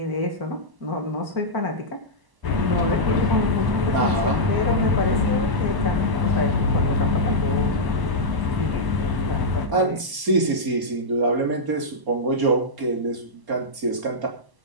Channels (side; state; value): left; late; 1.0 ms